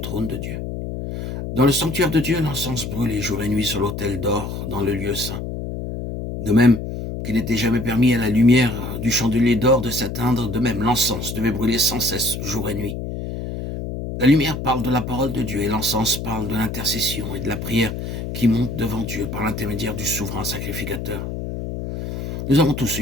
de Dieu. Dans le sanctuaire de Dieu, l'encens brûlait jour et nuit sur l'autel d'or dans le lieu saint. De même qu'il n'était jamais permis à la lumière du chandelier d'or de s'éteindre, de même l'encens devait brûler sans cesse jour et nuit. La lumière parle de la parole de Dieu et l'encens parle de l'intercession et de la prière qui monte devant Dieu par l'intermédiaire du souverain sacrificateur. Nous avons tous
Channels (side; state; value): left; noise; hum, 6 dB below the sound